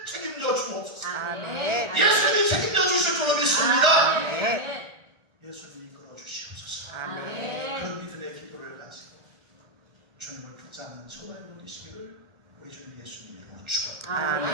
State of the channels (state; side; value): late; left; 1.4 ms